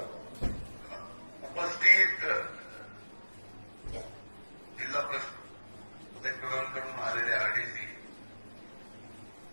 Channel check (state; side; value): inverted; both; correlation -1.00